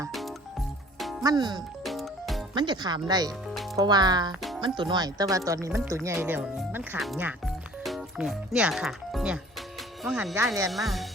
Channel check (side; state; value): both; normal; correlation 0.50